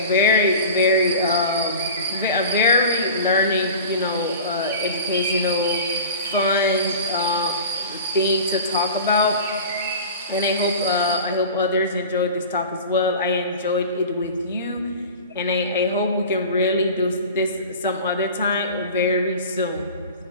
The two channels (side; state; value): both; inverted; correlation -0.37